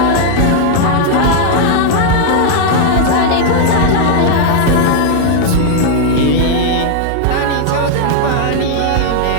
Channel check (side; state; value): both; different; correlation 0.00